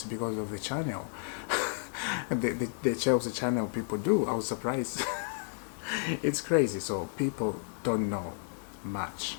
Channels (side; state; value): right; silent; 56 dB below the other